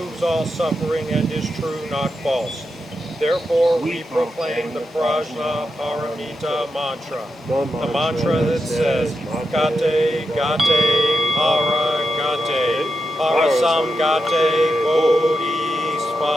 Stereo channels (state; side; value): normal; both; correlation 0.87